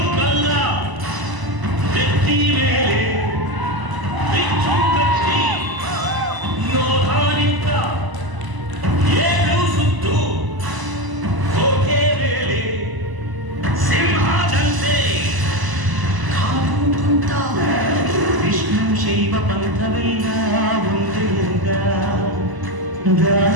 ವಿಷ್ಣು ಶೈವ ಪಂಥವೆಲ್ಲ ಒಂದೆಂದ,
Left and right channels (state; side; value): late; left; 1.0 ms